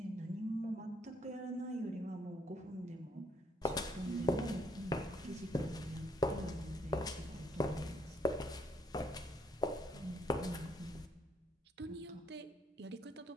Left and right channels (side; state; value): both; normal; correlation 0.70